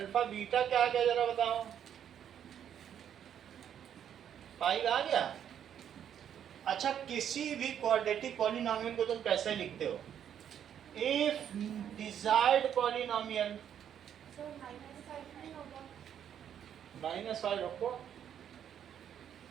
बीटा क्या आ गया जरा बताओ? 5 आ गया। अच्छा, किसी भी क्वाड्रेटिक पॉलिनॉमियल को तुम कैसे लिखते हो? इफ डिजायर्ड पॉलिनॉमियल, सर -5 नहीं होगा? -5 रखो,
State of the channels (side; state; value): left; quieter; 9.3 dB